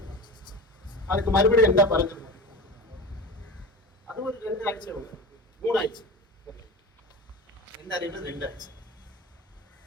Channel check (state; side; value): normal; both; correlation 0.29